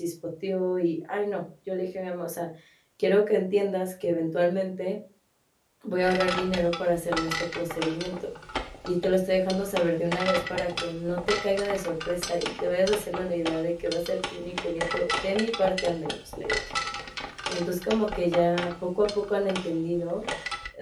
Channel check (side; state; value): both; identical; correlation 1.00